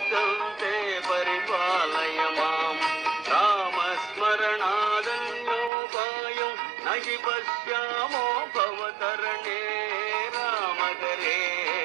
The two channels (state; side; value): drops out; left; at 5.7 s